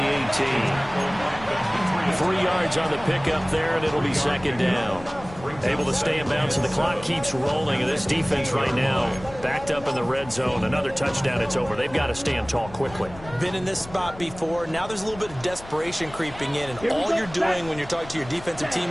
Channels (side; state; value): left; noise; rumble, 17 dB below the sound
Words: 18. 3 yards on the pickup there, and it'll be 2nd down. Able to stay in bounds, and the clock keeps rolling. And this defense right now backed up in the red zone. Another touchdown, it's over. They've got to stand tall quickly. Been in this spot before. Now there's a little bit of desperation creeping in. And all you're doing when you're talking to your defensive